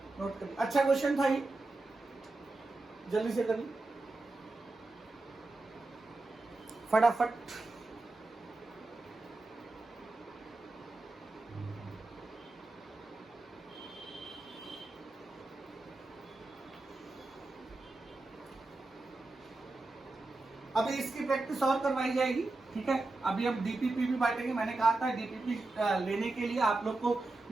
Note करिए, अच्छा question था ये, जल्दी से करिए फटाफट। अभी इसकी प्रैक्टिस और करवाई जाएगी, ठीक है। अभी हम डीपीपी भी बांटेंगे। मैंने कहा था डीपीपी लेने के लिए आप लोग को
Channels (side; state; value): left; quieter; 3.2 dB